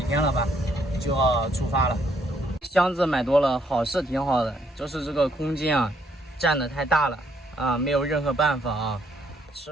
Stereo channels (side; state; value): both; normal; correlation 0.70